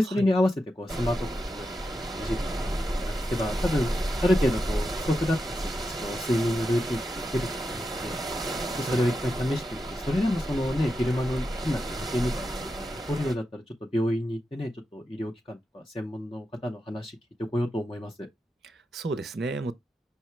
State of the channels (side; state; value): both; normal; correlation 0.88